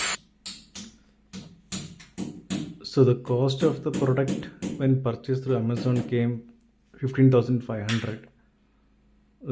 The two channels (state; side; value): identical; both; correlation 1.00